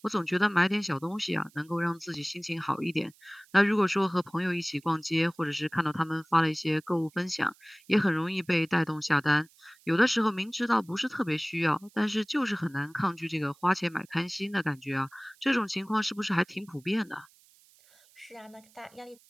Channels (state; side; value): noise; right; hiss, 29 dB below the sound